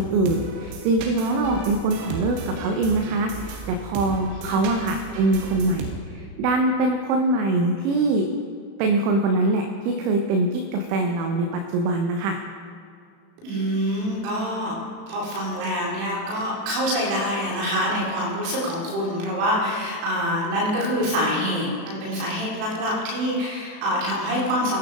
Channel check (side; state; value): left; late; 36 ms